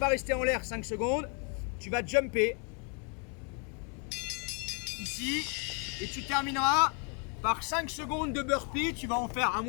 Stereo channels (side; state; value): right; quieter; 37.9 dB